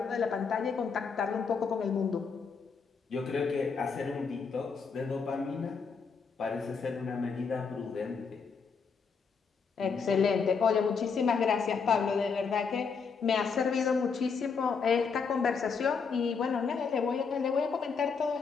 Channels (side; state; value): right; quieter; 5.5 dB